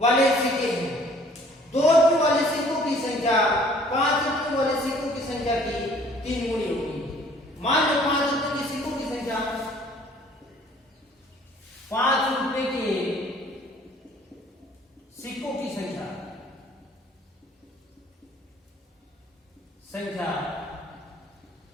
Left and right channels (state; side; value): normal; both; correlation 0.56